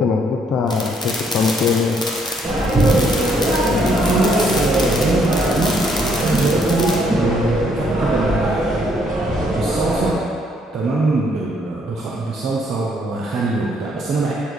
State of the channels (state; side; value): normal; both; correlation 0.69